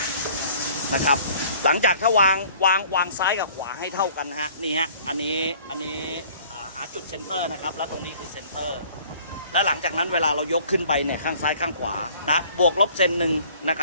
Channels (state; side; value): inverted; both; correlation -0.54